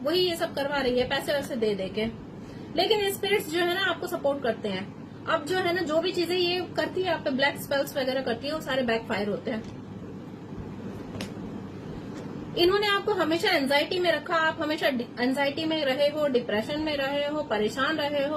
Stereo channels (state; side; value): identical; both; correlation 1.00